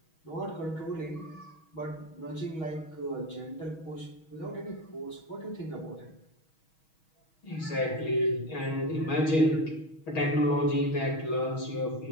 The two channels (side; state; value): right; late; 6.3 ms